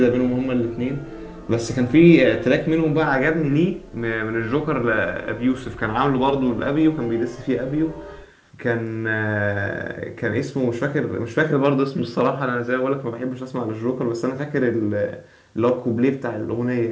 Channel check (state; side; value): identical; both; correlation 1.00